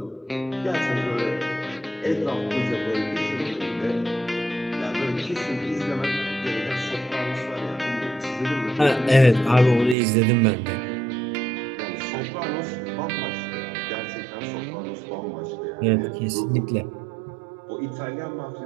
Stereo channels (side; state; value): left; drops out; at 10.0 s